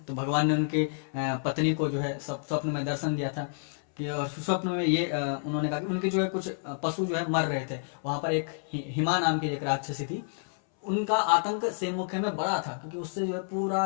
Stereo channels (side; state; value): right; silent; 58 dB below the other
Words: तो भगवान ने उनकी पत्नी को जो है स्वप्न में दर्शन दिया था कि, और स्वप्न में ये उन्होंने कहा कि उनके जो है कुछ पशु जो है मर रहे थे। वहां पर एक हिमा नाम की एक राक्षसी थी, उनका आतंक सेम मुख्य में बड़ा था, क्योंकि उससे जो है पूरा